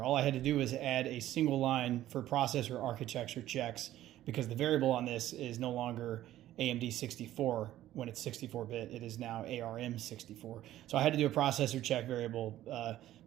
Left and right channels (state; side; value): quieter; left; 13.7 dB